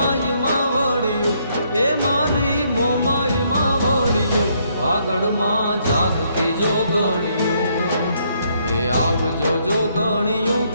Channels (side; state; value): both; inverted; correlation -0.71